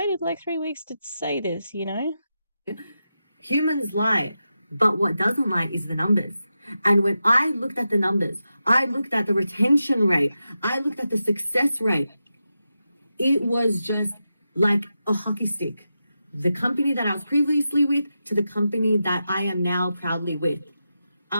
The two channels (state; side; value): inverted; both; correlation -0.89